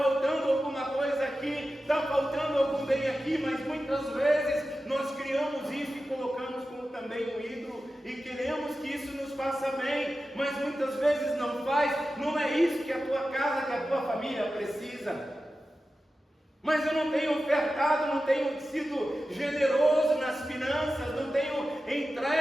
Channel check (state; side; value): normal; both; correlation 0.93